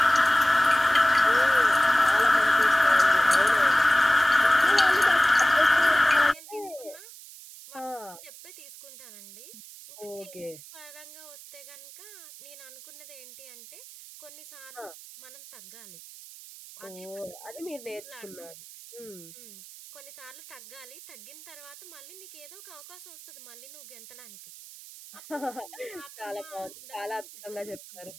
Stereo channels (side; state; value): right; noise; hiss, 18 dB below the sound